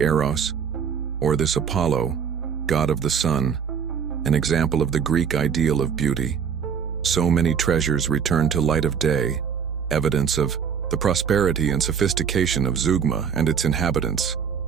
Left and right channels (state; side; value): quieter; left; 7.1 dB